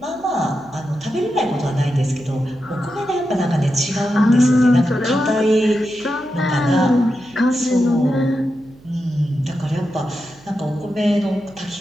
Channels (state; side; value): noise; right; hum, 26 dB below the sound